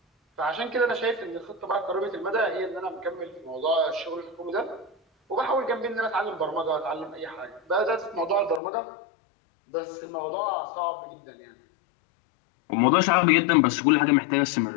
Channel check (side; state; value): right; drops out; at 8.6 s